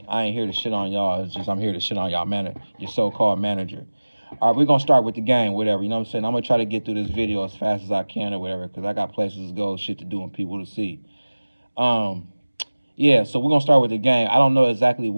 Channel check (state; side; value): inverted; both; correlation -1.00